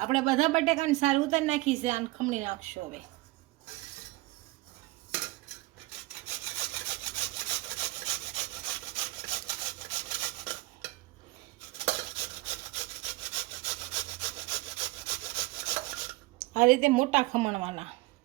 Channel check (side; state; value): left; quieter; 20.7 dB